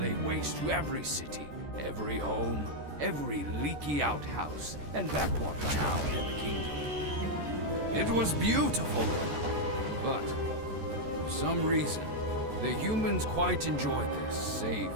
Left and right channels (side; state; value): left; late; 14 ms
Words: waste to every city, every home, every leaky outhouse, and backwater town in the kingdom. It was beautiful, but for some reason, the humans quite enjoyed their safe,